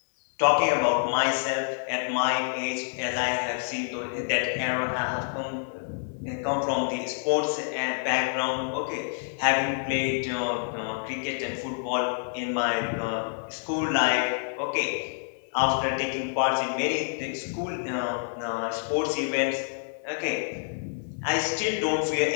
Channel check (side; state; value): right; silent; digital silence